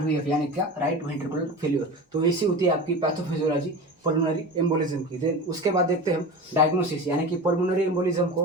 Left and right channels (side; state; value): both; normal; correlation 0.30